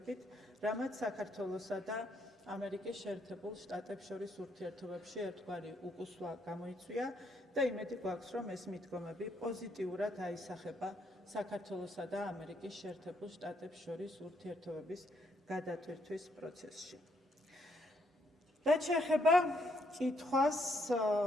რამაც საქართველოსა და ამერიკის შეერთებულ შტატებს შორის ურთიერთობებში ერთგვარი უკუსვლა გამოიწვია და იმედი გვაქვს, რომ ეს მიდგომები პოზიტიურად აისახება საქართველოსა და ამერიკის შეერთებულ შტატებს შორის ურთიერთობების გადატვირთვის პროცესში. რაც შეეხება კითხვას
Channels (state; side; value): normal; both; correlation 0.73